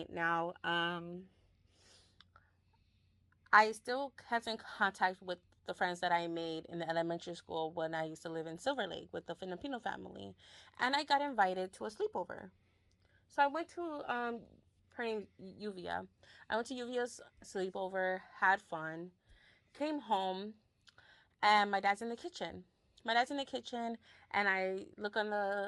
now. I still kept in contact with the friends that I made in the elementary school when I used to live in Silver Lake with the Filipino family. And I got invited to a sleepover. So I went to her name Yuvia. I went to Yuvia's sleepover, had fun, came home, and my dad's in the kitchen. My dad's in the kitchen, and I look on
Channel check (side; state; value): both; identical; correlation 1.00